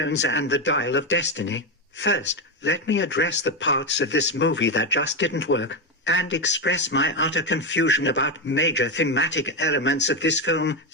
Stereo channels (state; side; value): normal; both; correlation 0.10